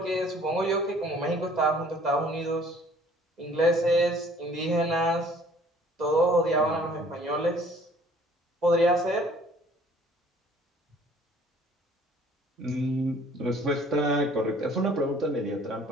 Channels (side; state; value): both; normal; correlation 0.55